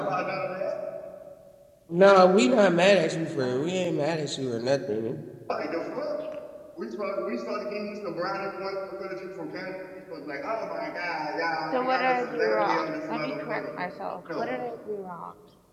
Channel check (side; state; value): both; identical; correlation 1.00